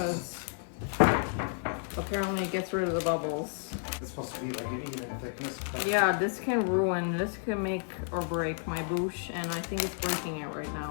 apparently it gets rid of the bubbles. It's supposed to be like an even thickness. Yeah, this can make or break my bûche, and I think it's breaking it right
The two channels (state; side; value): silent; right; digital silence